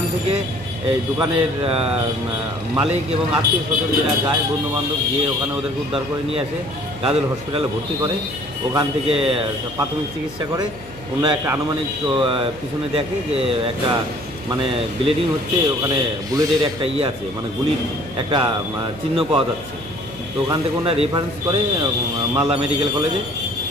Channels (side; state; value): left; noise; hum, 18 dB below the sound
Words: থেকে এই দোকানের মালিক এবং আত্মীয় স্বজন যারা যায়, বন্ধুবান্ধব, গিয়ে ওখানে ওদেরকে উদ্ধার করে নিয়ে আসে, গাজল হসপিটালে ভর্তি করে। ওখান থেকে প্রাথমিক চিকিৎসা করে। ওনারা একটা আনুমানিক পিছনে দেখে যে একটা মানে ব্লিডিং হচ্ছে, ওখানে বুলেটের একটা আছে, মানে গুলির একটা চিহ্ন পাওয়া যাচ্ছে। তো ওখান থেকে ওনারা রেফারেন্স করে মালদা মেডিকেল কলেজে।